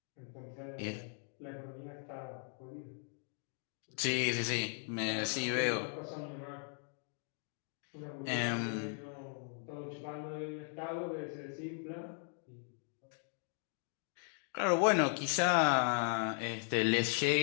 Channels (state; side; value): silent; right; 52 dB below the other